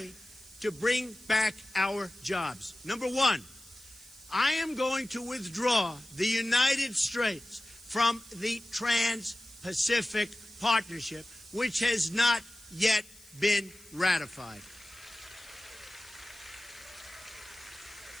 to bring back our jobs. Number 1, I am going to withdraw the United States from the Trans-Pacific Partnership, which has not yet been ratified.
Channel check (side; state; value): left; noise; hiss, 23 dB below the sound